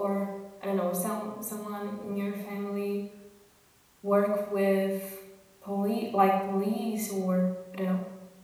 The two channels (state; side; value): identical; both; correlation 1.00